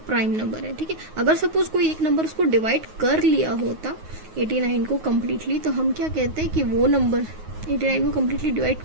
प्राइम नंबर है। ठीक है, अगर सपोज कोई एक नंबर उसको डिवाइड कर लिया होता 89 को कम्प्लीटली, तो हम क्या कहते हैं कि वो नंबर 89 को कम्प्लीटली डिवाइड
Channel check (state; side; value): late; left; 9.4 ms